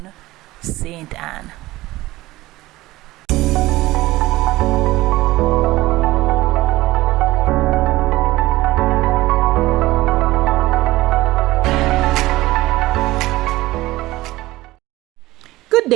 St. Ann. Good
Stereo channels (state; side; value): quieter; left; 18.2 dB